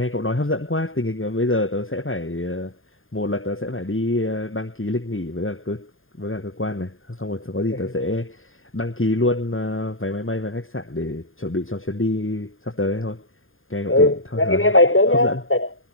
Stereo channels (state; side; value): late; right; 0.59 ms